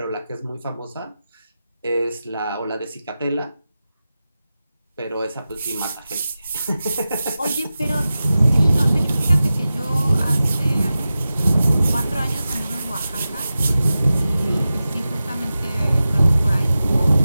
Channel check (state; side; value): inverted; both; correlation -0.94